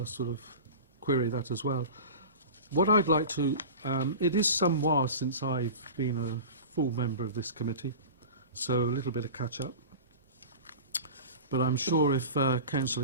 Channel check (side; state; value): both; inverted; correlation -0.33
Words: sort of query that as well. What I'd like to, it is some while since I've been a full member of this committee, so a little bit of catch up. But I'm sure if